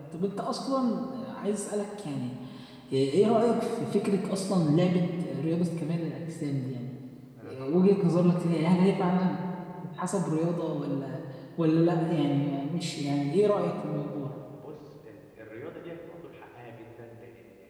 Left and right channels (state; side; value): identical; both; correlation 1.00